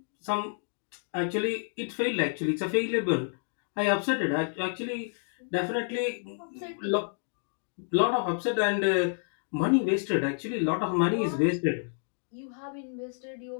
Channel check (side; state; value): right; silent; digital silence